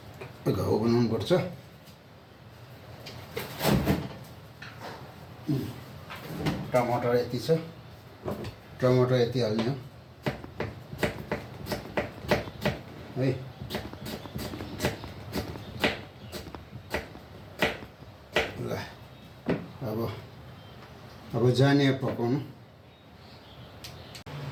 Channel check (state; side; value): identical; both; correlation 1.00